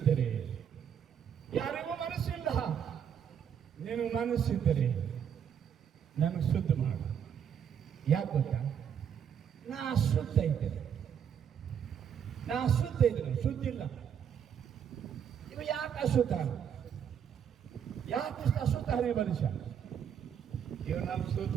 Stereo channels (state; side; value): quieter; left; 8.2 dB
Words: ಯಾರಿಗೂ ಮನಸ್ಸಿಲ್ಲ, ನಿನಗೆ ಮನಸ್ಸಿದ್ದರೆ ನನಗೆ ಶುದ್ಧ ಮಾಡು. ಯಾಕೆ ಗೊತ್ತಾ? ನಾ ಅಶುದ್ಧ ಇದ್ದೇನೆ, ಶುದ್ಧಿಲ್ಲ. ಇವ ಯಾಕೆ ಅಶುದ್ಧ? ಯಾಕೆ ಅಶುದ್ಧನೇ ಮನುಷ್ಯ? ಇವರು ನಮ್ಮ